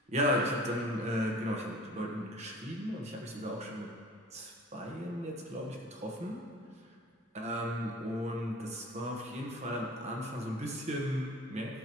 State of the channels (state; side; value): normal; both; correlation 0.44